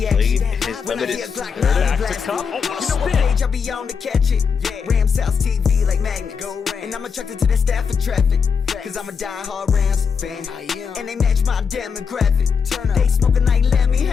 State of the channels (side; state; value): right; quieter; 6.1 dB